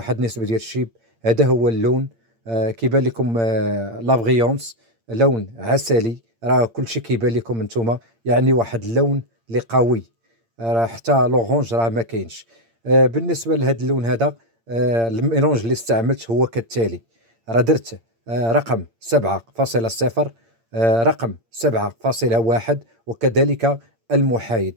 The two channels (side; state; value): left; late; 8.7 ms